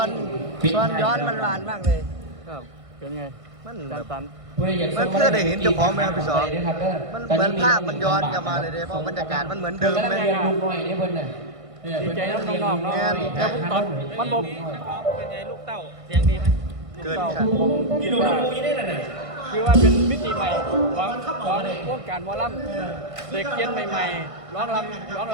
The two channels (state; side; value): late; left; 1.5 ms